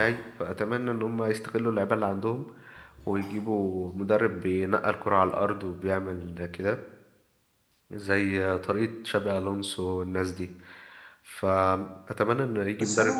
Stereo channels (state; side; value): identical; both; correlation 1.00